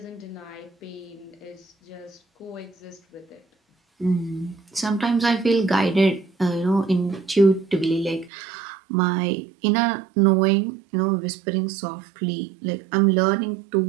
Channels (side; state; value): left; drops out; at 8.3 s